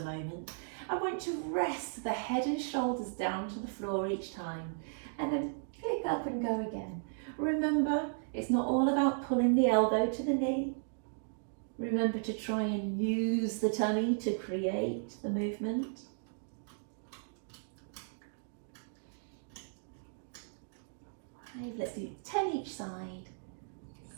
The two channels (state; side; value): silent; left; digital silence